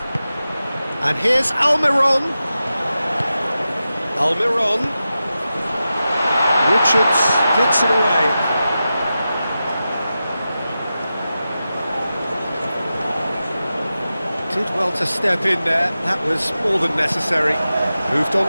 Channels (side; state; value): both; inverted; correlation -0.92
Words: And here's Almiron. Almiron. Richards gets it away. Did well to step in there, that was more than necessary. Moved on